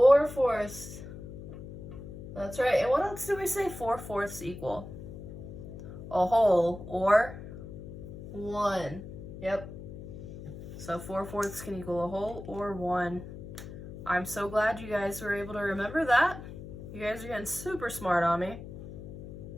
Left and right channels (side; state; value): left; noise; hum, 11 dB below the sound